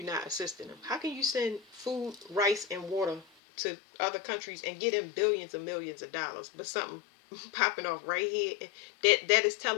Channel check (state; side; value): drops out; right; at 3.2 s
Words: not assisting them. How can you send food, rice, and water to other countries and get them billions and millions of dollars, but something popping off right here that is